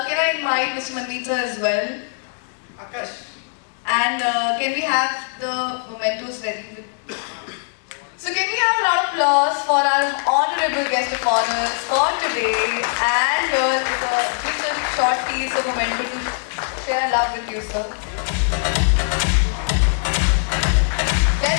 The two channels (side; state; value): right; silent; 65 dB below the other